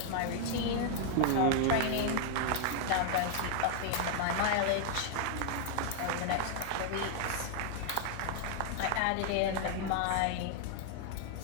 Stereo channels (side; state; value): both; different; correlation 0.00